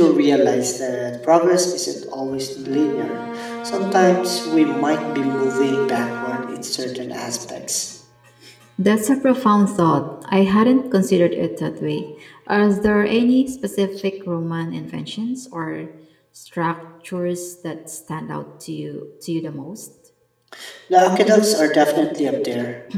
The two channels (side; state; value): both; identical; correlation 1.00